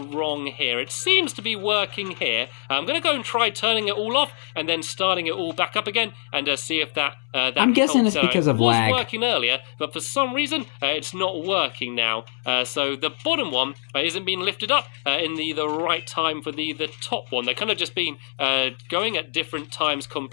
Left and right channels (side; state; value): right; silent; 63 dB below the other